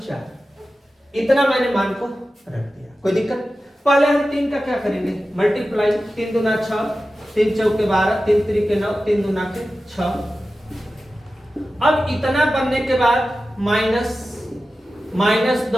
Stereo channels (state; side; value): normal; both; correlation 0.94